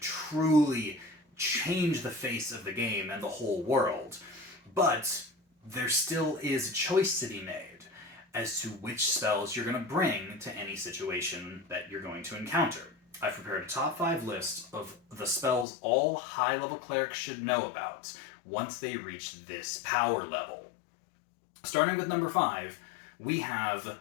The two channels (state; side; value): drops out; right; at 15.7 s